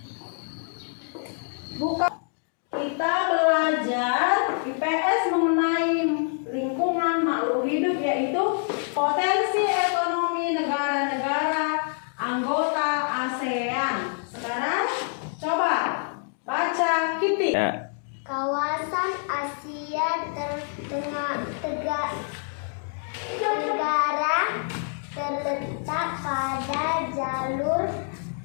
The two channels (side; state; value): right; silent; 55 dB below the other